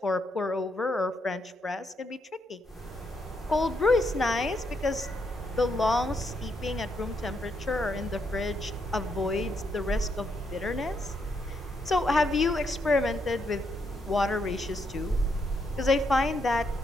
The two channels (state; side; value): normal; both; correlation 0.78